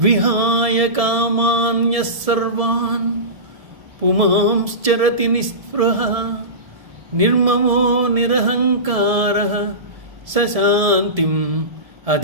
విహాయ కామాన్య సర్వాన్ పుమాంశ్చరతి నిస్పృహ నిర్మమో నిరహంకార సశాంతిం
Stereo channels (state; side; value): late; left; 1.7 ms